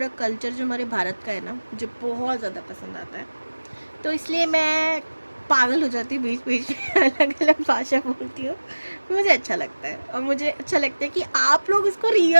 कल्चर जो हमारे भारत का है ना, मुझे बहुत ज़्यादा पसंद आता है। तो इसलिए मैं पागल हो जाती हूँ बीच बीच में, अलग अलग भाषा बोलती हूँ। मुझे अच्छा लगता है और मुझे अच्छा लगता है कि आप लोग इसको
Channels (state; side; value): inverted; both; correlation -1.00